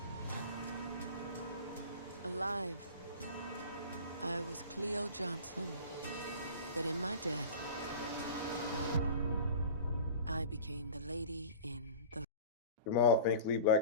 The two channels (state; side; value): inverted; both; correlation -0.38